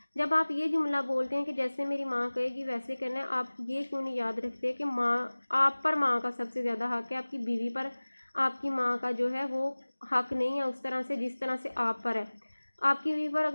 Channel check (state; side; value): inverted; both; correlation -1.00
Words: जब आप ये जुमला बोलते हैं कि जैसे मेरी माँ कहेगी वैसे करना है, आप ये क्यों नहीं याद रखते कि माँ, आप पर माँ का सबसे ज़्यादा हक़ है, आपकी बीवी पर आपकी माँ का जो है वो हक़ नहीं है उस तरह से जिस तरह से आप पर है। आपकी बीवी पर